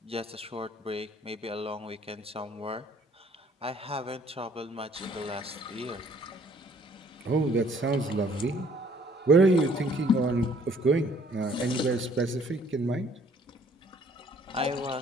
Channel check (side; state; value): both; normal; correlation 0.60